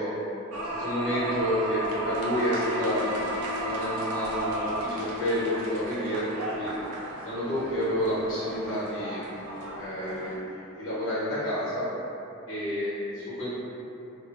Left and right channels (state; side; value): normal; both; correlation 0.17